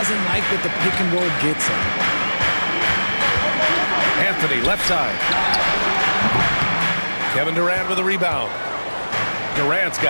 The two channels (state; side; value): inverted; both; correlation -1.00